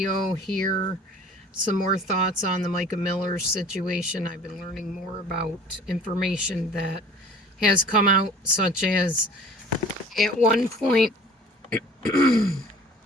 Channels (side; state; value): both; normal; correlation 0.46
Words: here. Some more thoughts on the Mica Miller situation. I've been learning more about information that has come out, such as at one point,